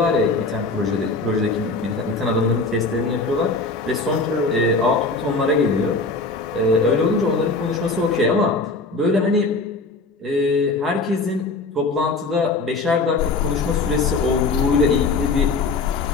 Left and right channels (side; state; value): right; quieter; 3.7 dB